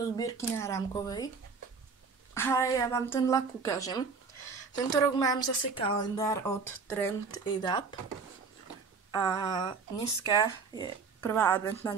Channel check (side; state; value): left; quieter; 5.0 dB